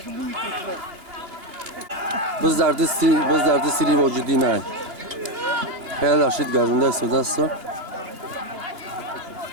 بز در دستی لی موجودی نه خیلی رشید گرونده است و دست رو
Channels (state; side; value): late; left; 2.8 ms